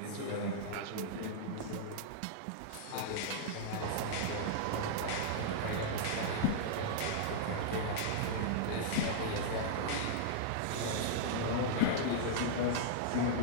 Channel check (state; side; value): different; both; correlation -0.02